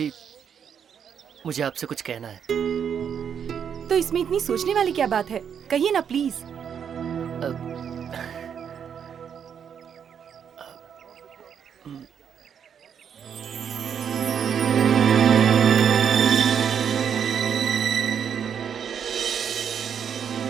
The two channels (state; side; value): quieter; left; 7.9 dB